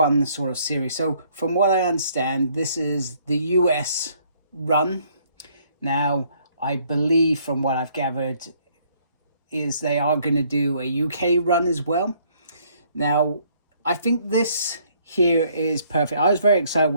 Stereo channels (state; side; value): inverted; both; correlation -0.64